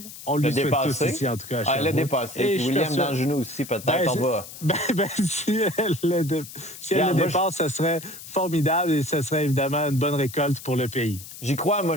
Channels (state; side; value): noise; left; hiss, 14 dB below the sound